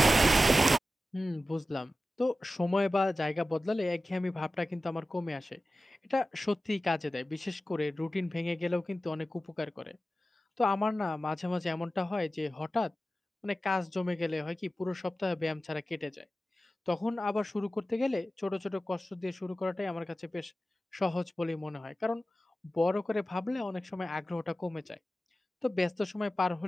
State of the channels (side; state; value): both; normal; correlation 0.94